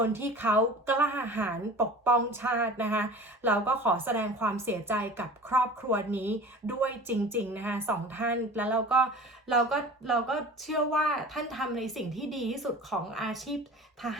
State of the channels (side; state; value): both; normal; correlation 0.39